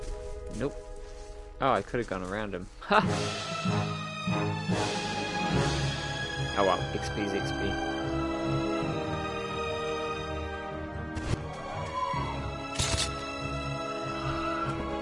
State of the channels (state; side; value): identical; both; correlation 1.00